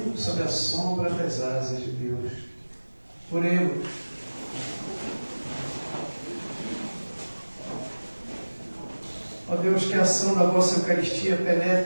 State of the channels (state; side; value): inverted; both; correlation -1.00